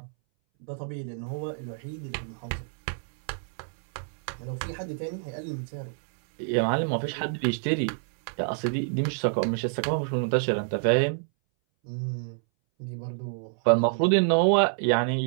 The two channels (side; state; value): left; silent; 60 dB below the other